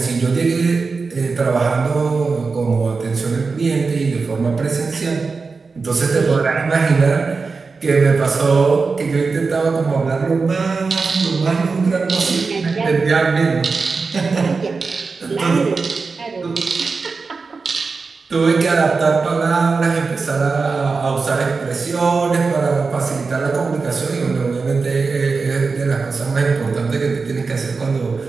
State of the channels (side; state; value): left; quieter; 4.5 dB